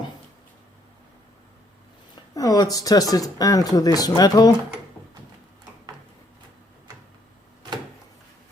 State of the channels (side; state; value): both; normal; correlation 0.69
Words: Now let's test it into this metal.